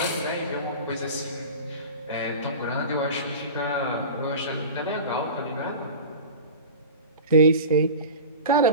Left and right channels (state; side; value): inverted; both; correlation -0.33